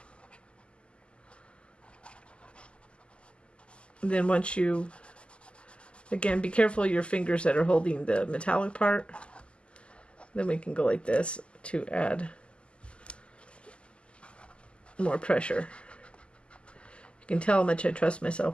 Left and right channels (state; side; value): late; right; 0.053 ms